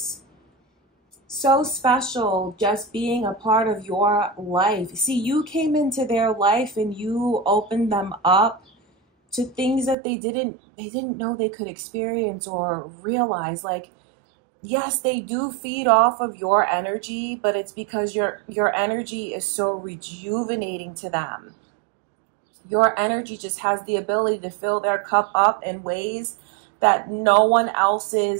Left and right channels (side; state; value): left; drops out; at 10.0 s